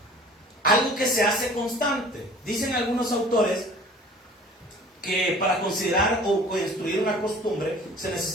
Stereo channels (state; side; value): normal; both; correlation 0.47